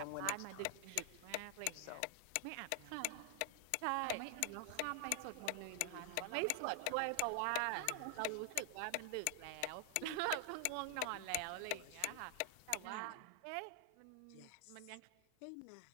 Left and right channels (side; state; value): both; different; correlation 0.00